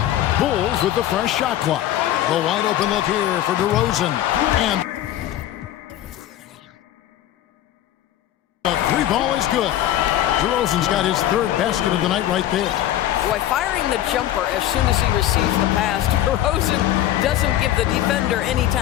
Bulls with the fresh shot clock. The wide open look here for DeRozan. And the 3 ball is good. DeRozan's got his 3rd basket of the night right there. Boy, firing the jumper as soon as he receives the pass, DeRozan doesn't give the defender any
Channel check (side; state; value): right; quieter; 12.7 dB